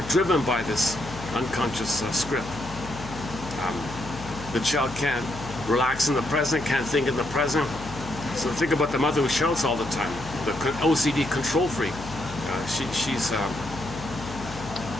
driven by this unconscious script. The child can't relax in the present, can't think in the present. So think about the mother who shouts all the time, the OCD control freak.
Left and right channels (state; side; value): noise; left; hum, 13 dB below the sound